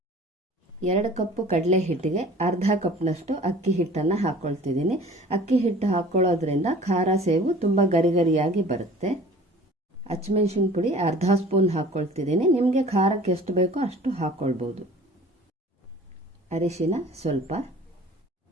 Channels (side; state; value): both; normal; correlation 0.46